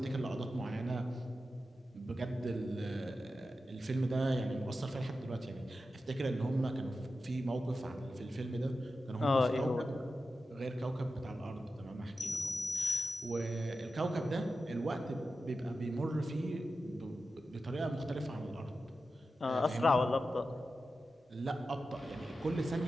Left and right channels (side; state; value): both; normal; correlation 0.91